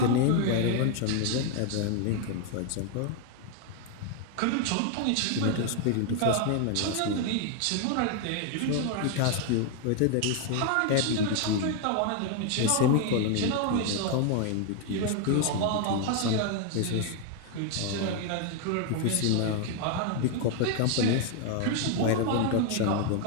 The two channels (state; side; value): different; both; correlation 0.01